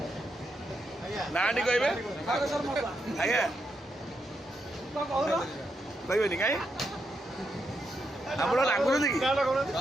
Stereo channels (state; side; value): normal; both; correlation 0.82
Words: ना टी कहे आज्ञा कहबेनि कहीं आप रागुंट कि